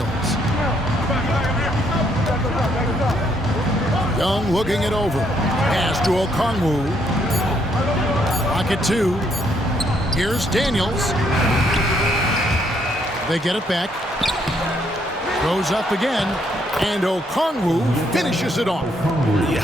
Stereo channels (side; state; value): both; normal; correlation 0.72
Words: Young looking it over. Pass to Okongwu. Pocket two. Here's Daniels. They get it back. Goes up again. And Okongwu finishes it off. Yeah,